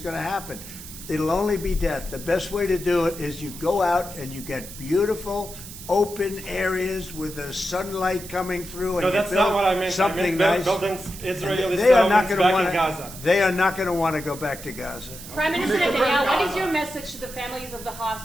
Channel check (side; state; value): right; noise; hiss, 14 dB below the sound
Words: going to happen. It'll only be death. The best way to do it is you go out and you get beautiful, open areas with the sunlight coming through. And No, that's not what I meant. Something I meant nice. building Israeli They are not settlements going to back want in Gaza. They are not going to want to go back to Gaza. Prime Minister Netanyahu, what is your message to the families of the